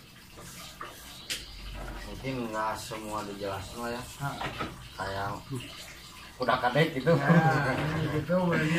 Mungkin nggak semua dijelasin lah ya. Kayak udah kadek gitu. Gitu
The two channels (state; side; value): identical; both; correlation 1.00